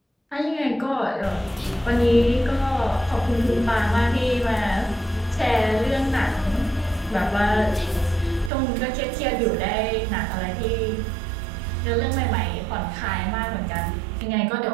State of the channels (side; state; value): left; drops out; at 8.5 s